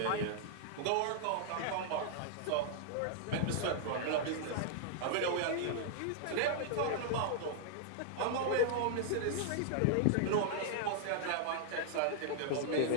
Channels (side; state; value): both; different; correlation -0.01